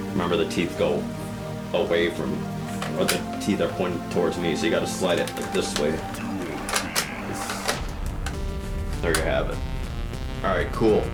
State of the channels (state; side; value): identical; both; correlation 1.00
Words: Remember, the teeth go away from, or the teeth are pointing towards me, so you gotta slide it like this way. There you have it. Alright, cool.